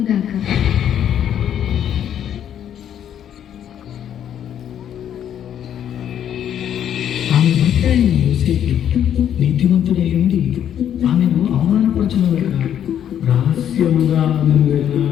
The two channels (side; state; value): right; quieter; 9.8 dB